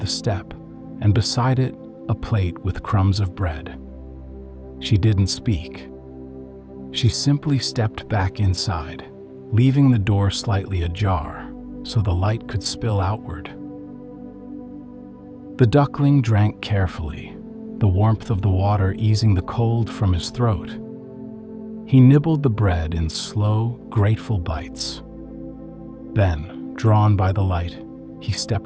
step, and beside it, a plate with crumbs of bread. She didn't speak. She simply stepped back inside, leaving the door slightly ajar so the light could spill outward. The duckling drank carefully, the warmth of the water easing the cold from his throat. He nibbled the bread in slow, grateful bites. Then, drawn by the light, he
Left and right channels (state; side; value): identical; both; correlation 1.00